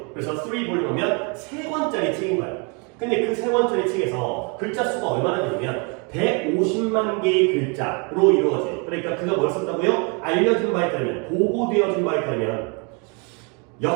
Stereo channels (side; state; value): left; quieter; 34.3 dB